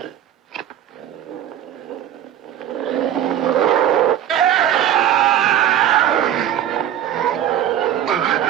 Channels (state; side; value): quieter; left; 10.9 dB